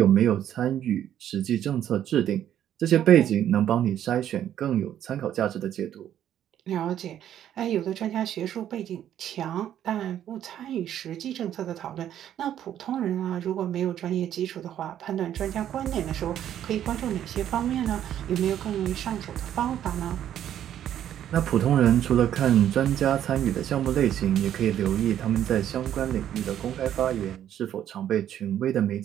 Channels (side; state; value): left; quieter; 10.7 dB